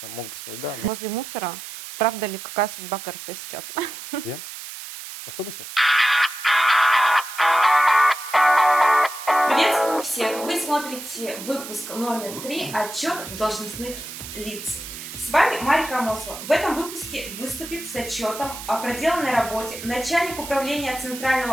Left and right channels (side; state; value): right; noise; hiss, 11 dB below the sound